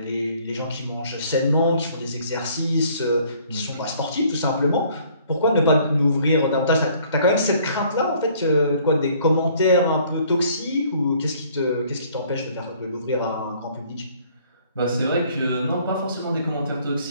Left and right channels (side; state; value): both; inverted; correlation -0.59